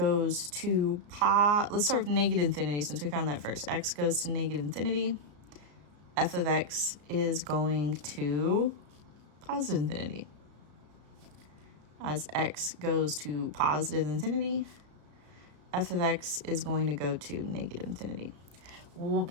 to let's start with negative infinity since we found that first. X goes to negative infinity. F of x is going to positive infinity. As x goes to positive infinity, f of x is going to go to negative infinity.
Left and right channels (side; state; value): left; late; 34 ms